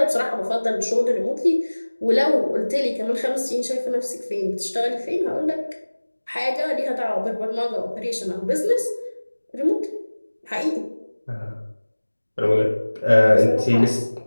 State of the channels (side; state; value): both; inverted; correlation -1.00